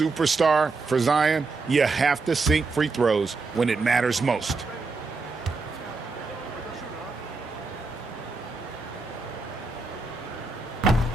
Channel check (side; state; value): left; quieter; 3.9 dB